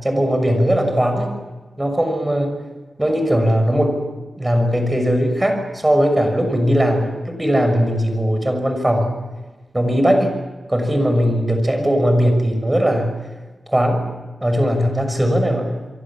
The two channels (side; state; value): both; normal; correlation 0.94